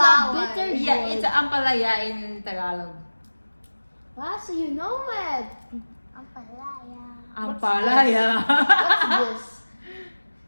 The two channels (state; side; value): inverted; both; correlation -1.00